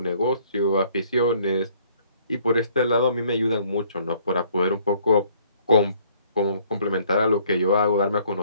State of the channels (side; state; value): both; inverted; correlation -0.61